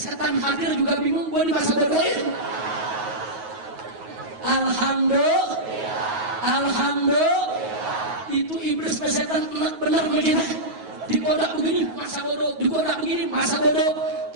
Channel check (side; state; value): left; late; 9.3 ms